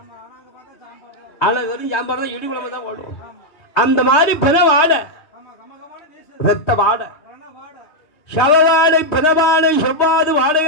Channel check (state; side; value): late; right; 3.2 ms